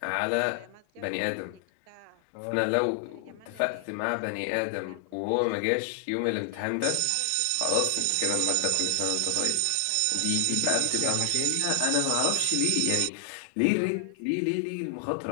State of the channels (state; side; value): different; both; correlation 0.00